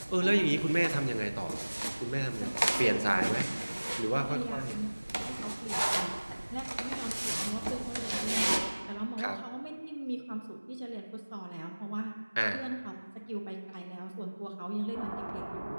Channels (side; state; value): both; inverted; correlation -1.00